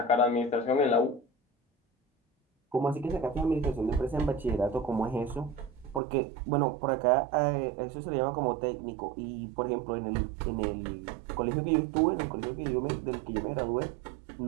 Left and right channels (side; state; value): left; drops out; at 6.0 s